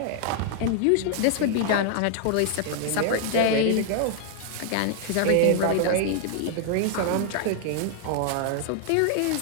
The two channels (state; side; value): different; both; correlation 0.00